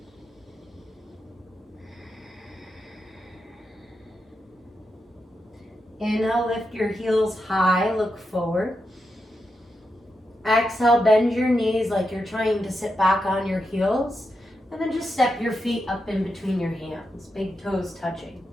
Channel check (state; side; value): normal; both; correlation 0.86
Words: Inhale, lift your heels high, look forward. Exhale, bend your knees like you're trying to sit back on your heels. And then just step your feet up in between your hands, big toes touching.